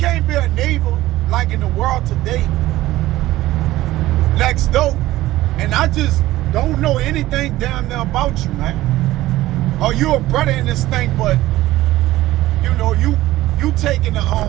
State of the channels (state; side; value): quieter; left; 16.3 dB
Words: be a neighbor like in the world today, next door, and I just don't know anything down there about you, man. Or you a brother in this thing, but you taking